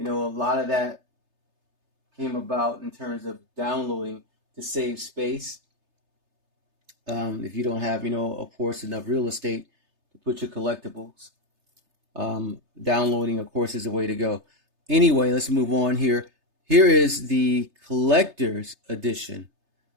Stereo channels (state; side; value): late; left; 3.3 ms